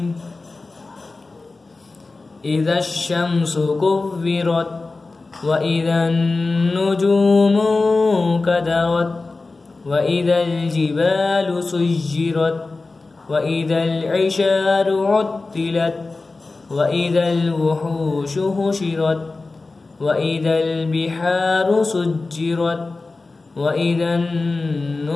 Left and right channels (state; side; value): quieter; right; 3.6 dB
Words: إذا الشمس كورت وإذا النجوم انكدرت وإذا الجبال سيرت وإذا العشار عطلت وإذا الوحوش حشرت وإذا البحار سجرت وإذا